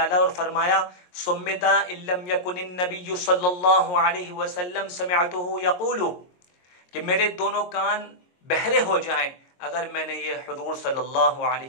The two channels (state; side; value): late; right; 22 ms